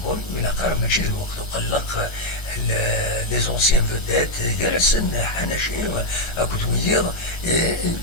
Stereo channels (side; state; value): right; late; 1.3 ms